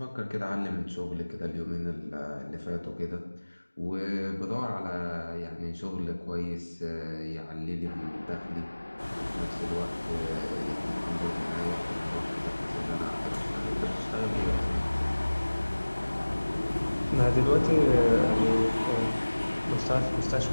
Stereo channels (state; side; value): inverted; both; correlation -1.00